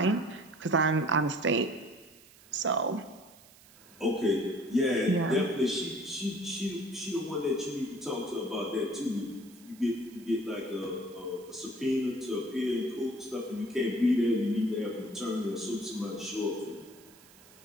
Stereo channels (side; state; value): right; noise; hiss, 24 dB below the sound